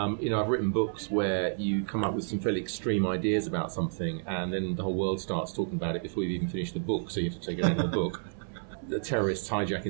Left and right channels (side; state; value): left; silent; 58 dB below the other